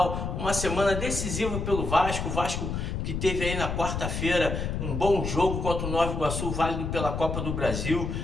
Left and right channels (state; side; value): noise; left; rumble, 3 dB below the sound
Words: uma semana decisiva pelo Vasco. O Vasco que teve aí na quarta-feira um bom jogo contra o Nova Iguaçu, válido pela Copa do Brasil.